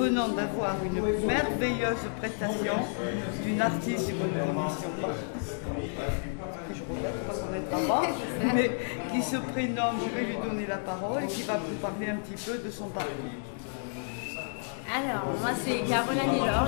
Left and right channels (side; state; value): right; silent; digital silence